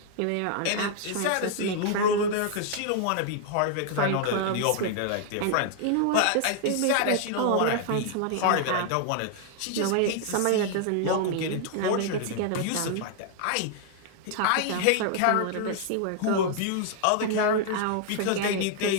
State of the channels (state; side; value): different; both; correlation 0.00